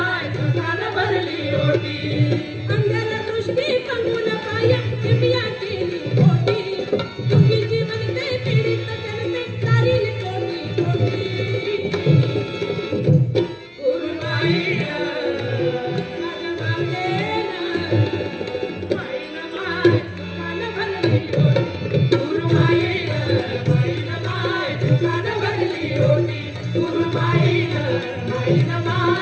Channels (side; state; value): both; identical; correlation 1.00